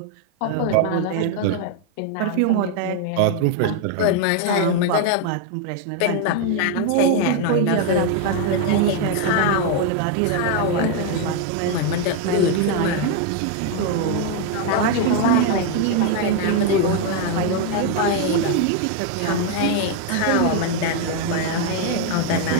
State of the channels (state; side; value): different; both; correlation 0.01